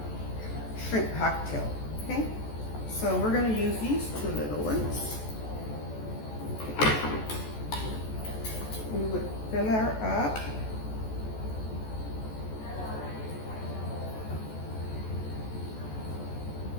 shrimp cocktail. Okay, so we're gonna use these two little ones. We would fill her up.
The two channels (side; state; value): right; late; 14 ms